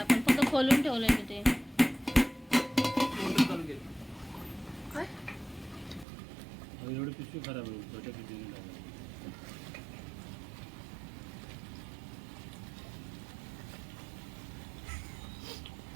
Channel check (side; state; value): left; drops out; at 6.1 s